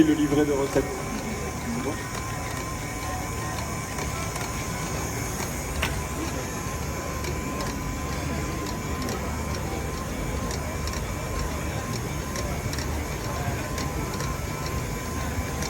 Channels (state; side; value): identical; both; correlation 1.00